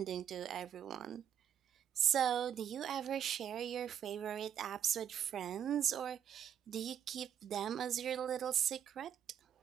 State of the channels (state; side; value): quieter; left; 9.3 dB